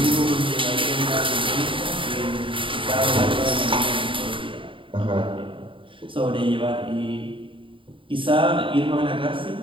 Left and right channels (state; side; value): late; left; 0.25 ms